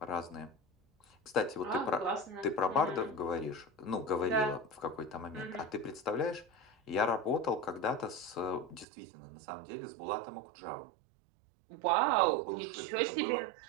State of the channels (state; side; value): drops out; left; at 8.8 s